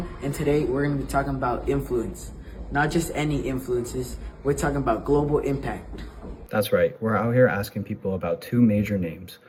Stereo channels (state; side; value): identical; both; correlation 1.00